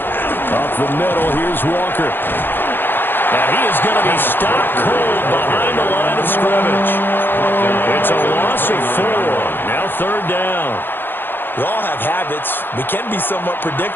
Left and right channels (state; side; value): late; right; 0.099 ms